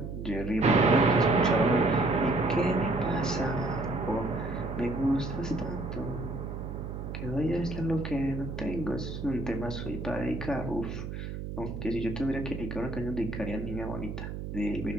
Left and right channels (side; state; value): right; noise; hum, 7 dB below the sound